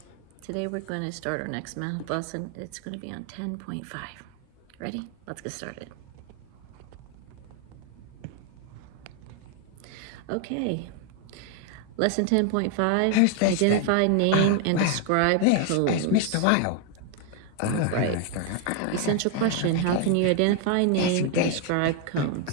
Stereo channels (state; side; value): different; both; correlation 0.01